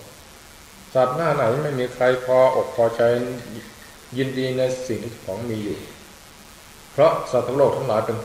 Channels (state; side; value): identical; both; correlation 1.00